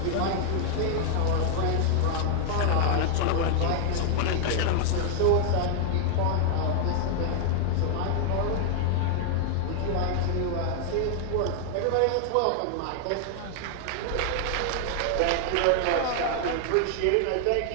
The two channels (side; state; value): both; different; correlation 0.00